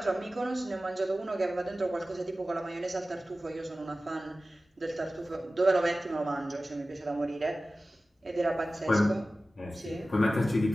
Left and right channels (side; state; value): both; normal; correlation 0.96